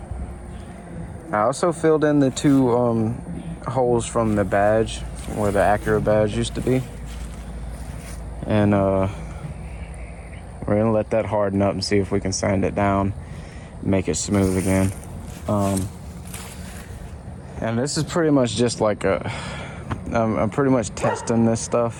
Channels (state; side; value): identical; both; correlation 1.00